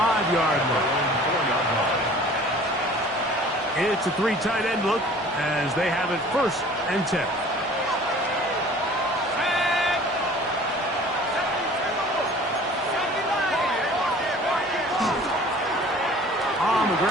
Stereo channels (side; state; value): both; normal; correlation 0.47